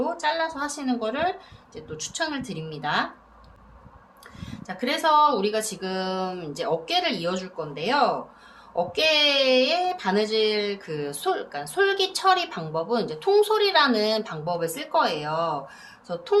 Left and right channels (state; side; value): identical; both; correlation 1.00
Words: 잘라서 하시는 거를 이제 또 추천을 드립니다. 자, 그래서 우리가 지금 이제 어깨를 이어줄 건데요. 어깨에 바느질 그러니까 솔기 처리 방법은 이제 통솔이라는 방법을 쓸 거예요. 그래서